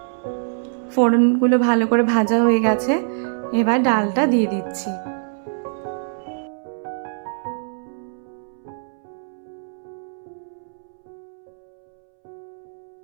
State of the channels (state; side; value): silent; left; 63 dB below the other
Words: ফোড়নগুলো ভালো করে ভাজা হয়ে গেছে, এবার ডালটা দিয়ে দিচ্ছি।